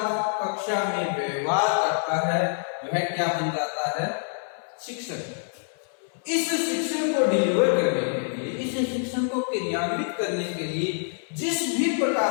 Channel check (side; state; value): right; silent; 61 dB below the other